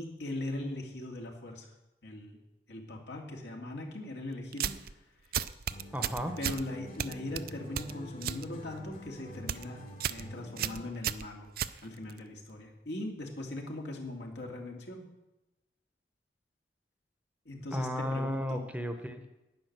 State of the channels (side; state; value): both; normal; correlation 0.56